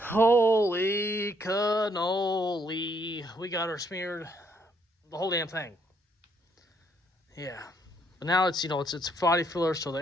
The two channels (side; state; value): both; normal; correlation 0.70